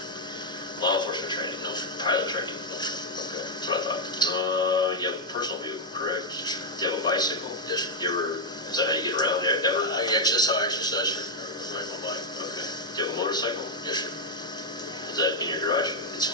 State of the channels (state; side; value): normal; both; correlation -0.01